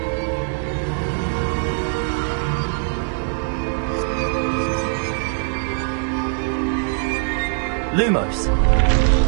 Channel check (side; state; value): left; silent; 65 dB below the other